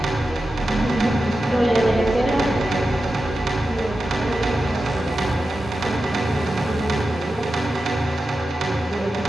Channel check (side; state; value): both; normal; correlation 0.91